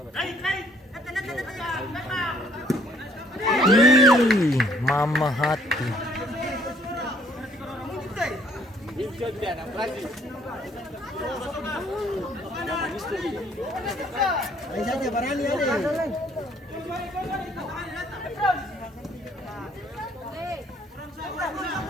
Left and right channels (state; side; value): normal; both; correlation 0.61